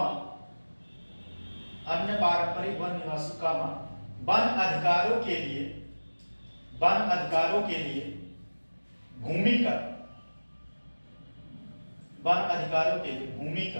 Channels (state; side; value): inverted; both; correlation -1.00